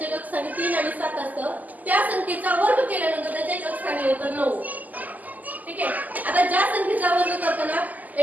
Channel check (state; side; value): late; left; 0.080 ms